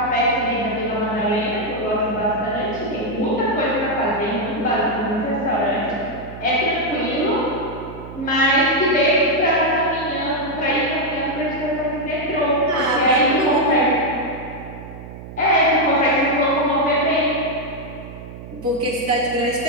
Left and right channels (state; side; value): noise; right; hum, 13 dB below the sound